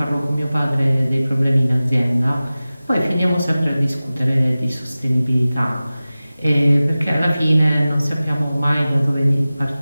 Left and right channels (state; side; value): inverted; both; correlation -0.97